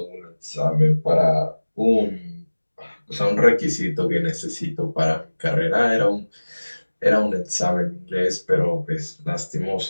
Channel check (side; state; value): both; inverted; correlation -1.00